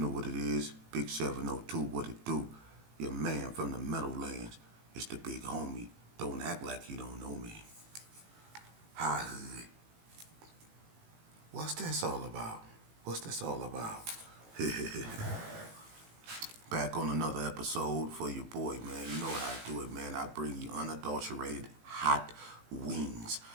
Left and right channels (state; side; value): late; left; 18 ms